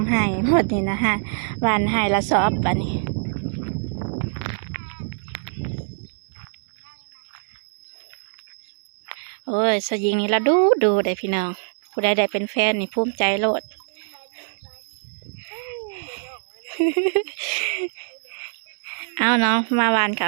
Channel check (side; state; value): left; silent; 63 dB below the other